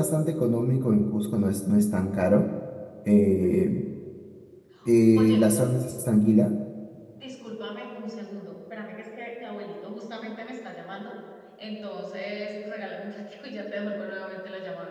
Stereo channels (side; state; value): both; identical; correlation 1.00